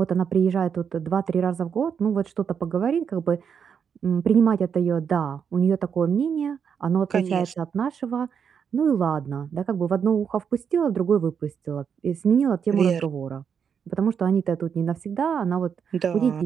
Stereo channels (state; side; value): quieter; left; 7.1 dB